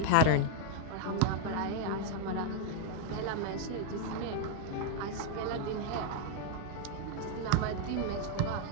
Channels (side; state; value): both; different; correlation 0.00